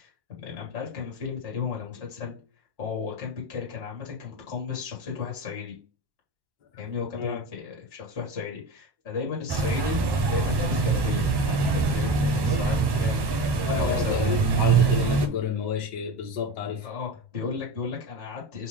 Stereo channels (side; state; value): left; late; 1.1 ms